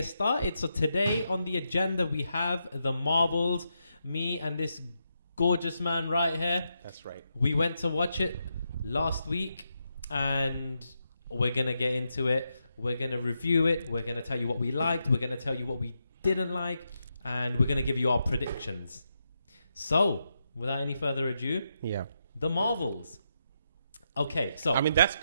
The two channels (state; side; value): inverted; both; correlation -0.84